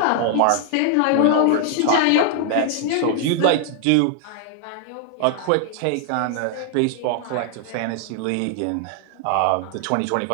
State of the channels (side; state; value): both; different; correlation 0.00